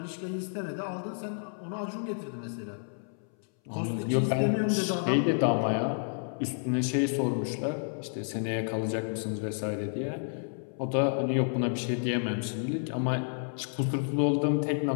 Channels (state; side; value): silent; right; 58 dB below the other